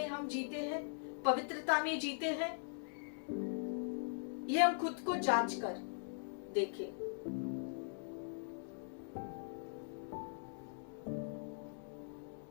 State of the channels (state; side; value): silent; right; digital silence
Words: हम जीते हैं, पवित्रता में जीते हैं? ये हम खुद को जांच कर देखें।